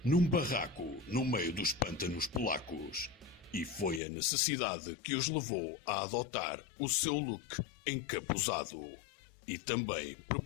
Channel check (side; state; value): right; drops out; at 4.0 s